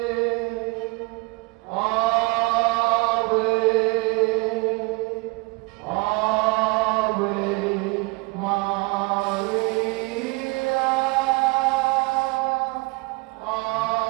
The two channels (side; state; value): left; quieter; 26.9 dB